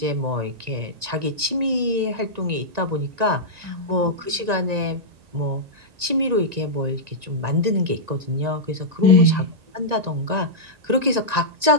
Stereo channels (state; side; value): late; left; 1.9 ms